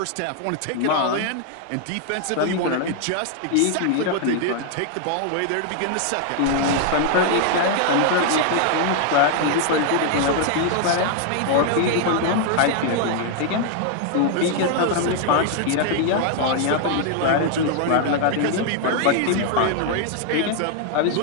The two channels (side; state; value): both; different; correlation 0.00